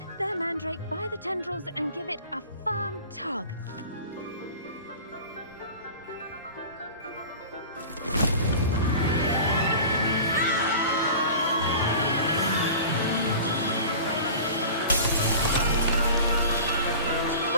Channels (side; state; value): both; inverted; correlation -0.38